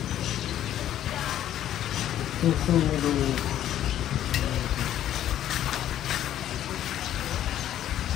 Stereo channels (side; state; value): right; quieter; 11.6 dB